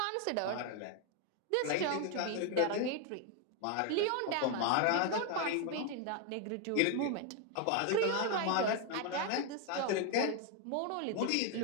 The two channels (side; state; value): both; different; correlation 0.01